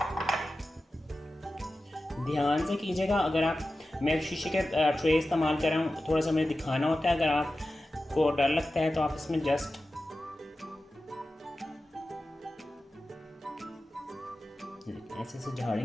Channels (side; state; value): both; normal; correlation 0.94